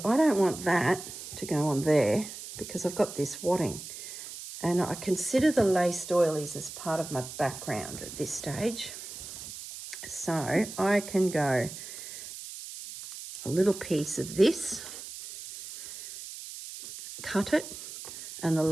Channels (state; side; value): noise; right; hiss, 11 dB below the sound